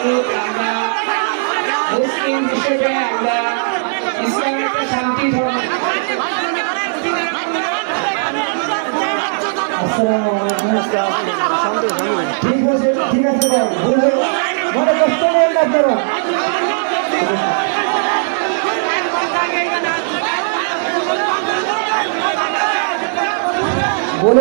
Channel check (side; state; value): left; silent; digital silence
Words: আমরা মুসলিম হিসেবে আমরা ইসলামের একটা শান্তি ধর্ম। ঠিক আছে মনে কষ্ট নেই আপনারা।